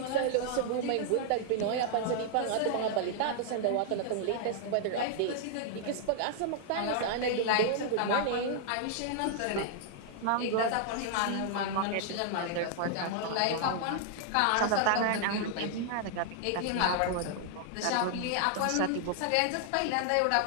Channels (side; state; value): both; different; correlation -0.01